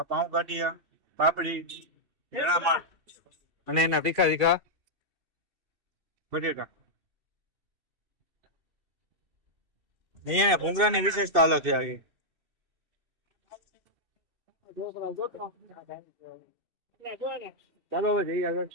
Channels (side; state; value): left; late; 2.7 ms